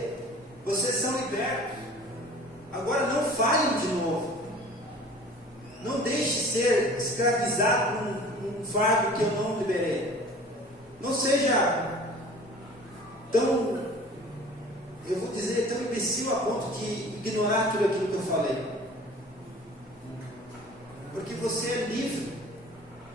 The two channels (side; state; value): both; normal; correlation 0.45